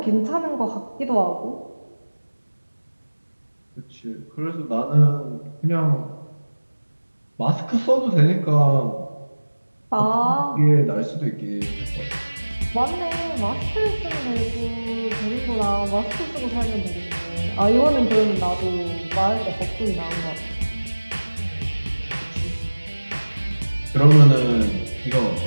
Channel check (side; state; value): both; inverted; correlation -1.00